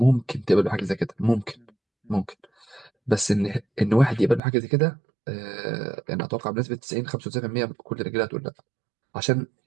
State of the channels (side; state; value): left; drops out; at 4.4 s